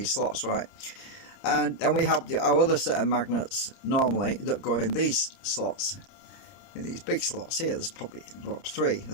slots, right? And then we have our other set of magnets normally that go in these slots, in these big slots here. There's probably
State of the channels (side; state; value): right; late; 30 ms